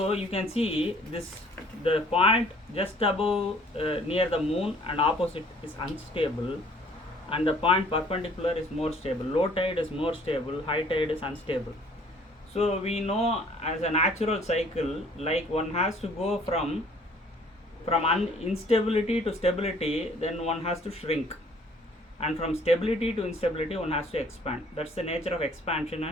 you can see this, the point just above near the moon and opposite is unstable, and the point perpendicular is more stable. Low tide is more stable, high tide is unstable. So we know as a natural cycle, like one has to go from instability to stability, then one has to shrink, and from stability to instability one has to expand. That's the nature of expansion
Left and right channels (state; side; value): normal; both; correlation 0.57